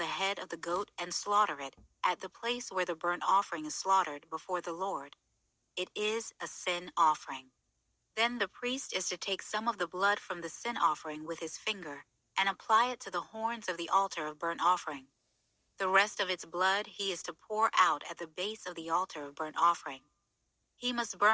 head of the goat and slaughter it at the place where the burnt offering is slaughtered before the Lord. It is a sin offering. Then the priest is to take some of the blood from the sin offering with his finger and apply it to the horns of the altar of burnt offering. The rest of its blood he is to pour out at the base of the altar of burnt offering. He must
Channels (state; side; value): identical; both; correlation 1.00